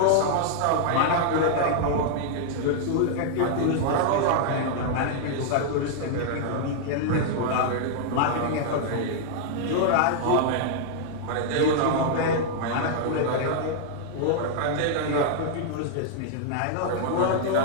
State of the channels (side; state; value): both; different; correlation -0.01